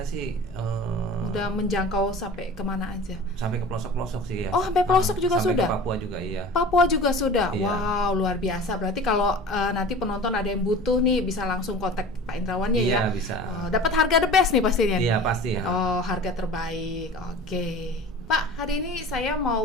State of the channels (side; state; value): both; normal; correlation 0.39